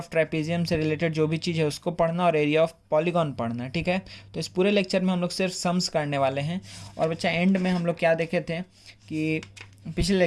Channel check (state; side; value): identical; both; correlation 1.00